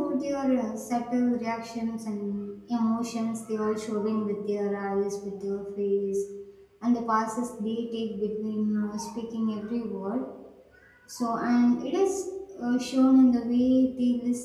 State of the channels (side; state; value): both; identical; correlation 1.00